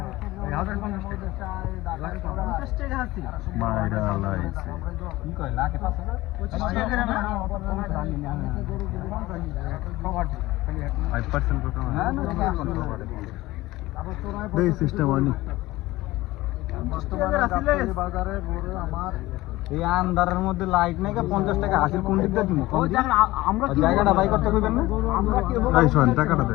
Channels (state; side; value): quieter; right; 18.4 dB